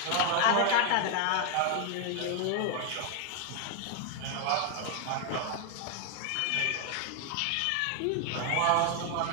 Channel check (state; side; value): different; both; correlation 0.00